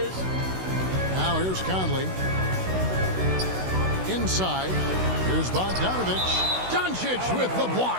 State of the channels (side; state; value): left; late; 16 ms